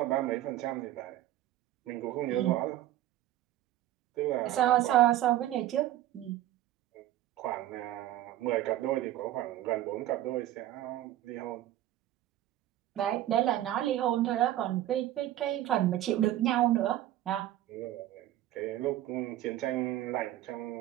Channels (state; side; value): quieter; left; 13.8 dB